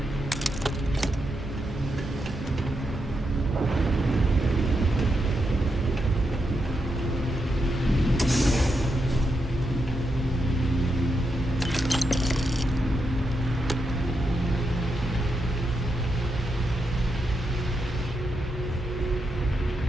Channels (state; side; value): normal; both; correlation 0.84